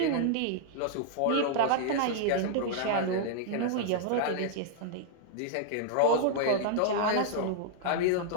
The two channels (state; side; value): different; both; correlation -0.01